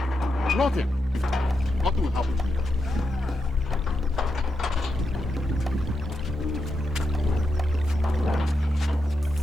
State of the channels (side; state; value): both; normal; correlation 0.86